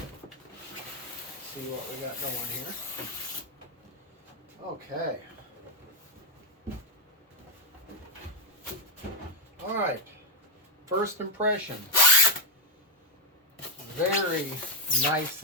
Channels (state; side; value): normal; both; correlation 0.06